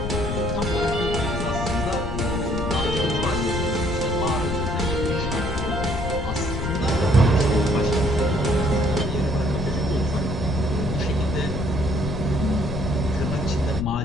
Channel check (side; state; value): left; noise; rumble, 4 dB below the sound